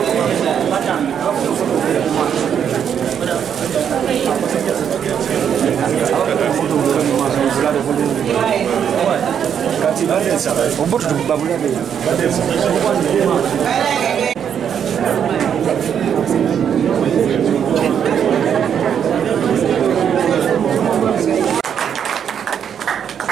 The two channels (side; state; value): left; quieter; 8.3 dB